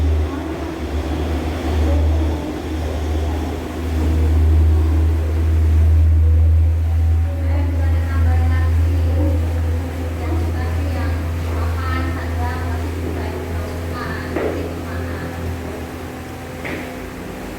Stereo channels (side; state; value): both; identical; correlation 1.00